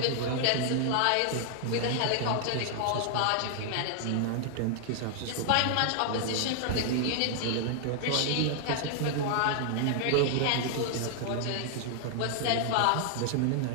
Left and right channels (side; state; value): both; different; correlation 0.00